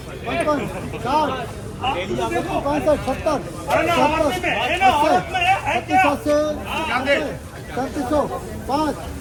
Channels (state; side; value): identical; both; correlation 1.00